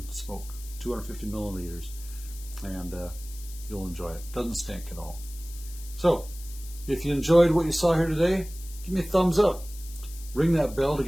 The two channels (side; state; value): left; noise; hiss, 17 dB below the sound